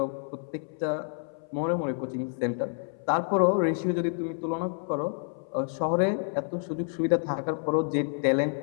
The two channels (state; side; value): silent; right; 59 dB below the other